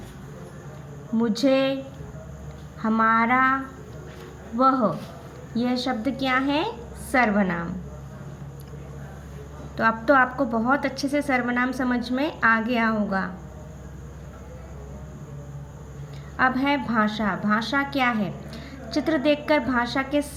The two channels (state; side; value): identical; both; correlation 1.00